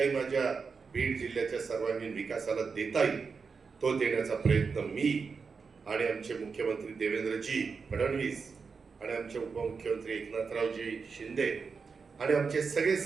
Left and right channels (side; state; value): left; quieter; 5.2 dB